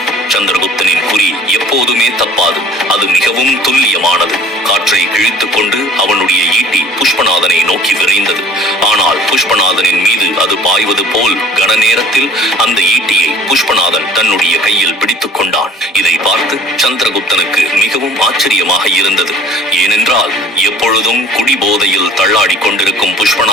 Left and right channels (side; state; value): both; normal; correlation 0.48